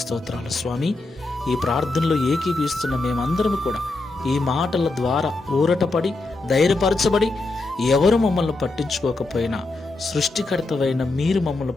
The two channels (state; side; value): quieter; right; 3.2 dB